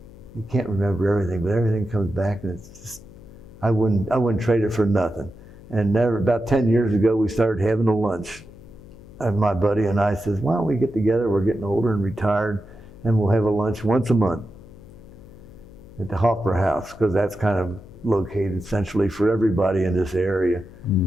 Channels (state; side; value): noise; left; hum, 20 dB below the sound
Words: can't remember everything, but everything comes back, and it's just, I wouldn't trade it for nothing. And about 10 years ago, we started having a lunch. And my buddy and I says, why don't we get together? We're getting older and retired, and we'll have a lunch once a month at the Hoffer House, because that's kind of located centrally for everybody in this area.